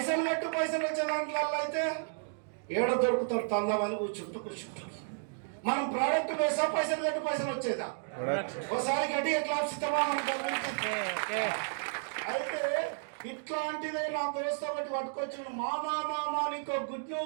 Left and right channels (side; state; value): left; silent; digital silence